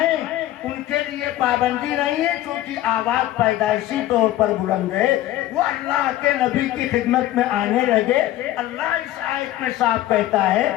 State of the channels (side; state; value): right; quieter; 14.3 dB